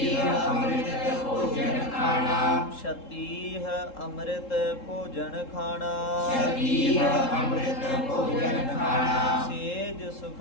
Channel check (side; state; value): right; late; 3.7 ms